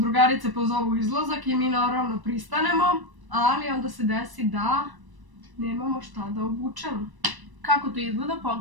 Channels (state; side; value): late; left; 1.0 ms